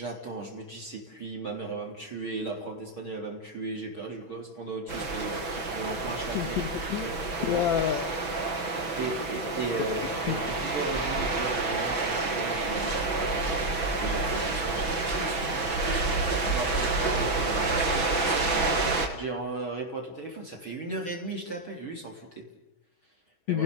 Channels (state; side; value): late; right; 6.1 ms